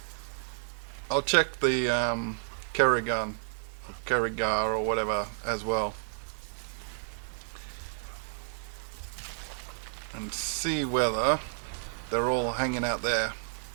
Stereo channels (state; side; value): silent; left; digital silence